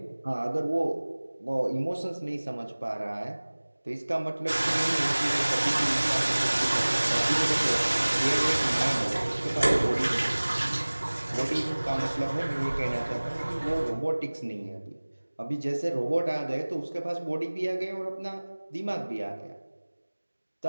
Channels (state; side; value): inverted; both; correlation -1.00